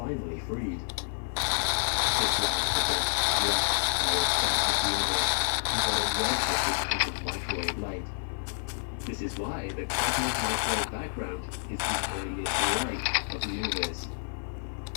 freed. This last the universe until it redshifted into microwave light. This is why the cosmic microwave background is the earliest light of the universe.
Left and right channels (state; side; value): silent; right; 59 dB below the other